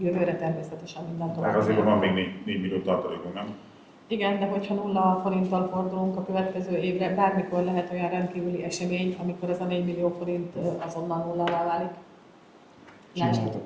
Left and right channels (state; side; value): identical; both; correlation 1.00